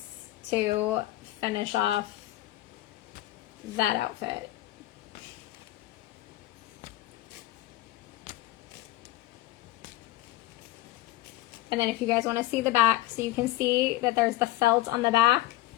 to finish off that outfit. And then if you guys want to see the back, so you can see that there's the felt on the back,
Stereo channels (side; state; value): right; quieter; 16.1 dB